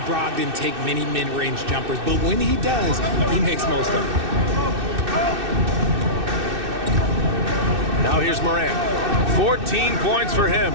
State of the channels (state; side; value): late; left; 2.6 ms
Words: Brogdon take many mid-range jumpers, but when he does, he makes most of them. Now here's Morant. 14 points for him